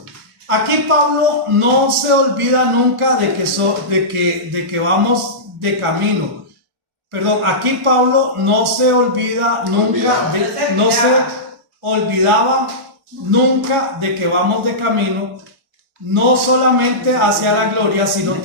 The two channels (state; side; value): late; left; 1.4 ms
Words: Aquí Pablo no se olvida nunca de que vamos de camino. Perdón, aquí Pablo no se olvida nunca, no se olvidaba nunca de que vamos de camino, no solamente hacia la gloria, sino